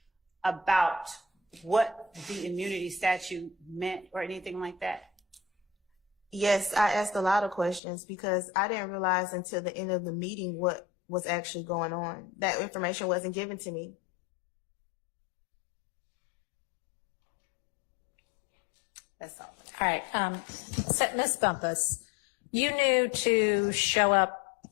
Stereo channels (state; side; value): drops out; right; at 7.8 s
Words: about what the immunity statute meant or anything like that? Yes, I asked a lot of questions because I didn't realize until the end of the meeting what was actually going on. That information wasn't given to me. That's all. All right. So Ms. Bumpus, you knew to show up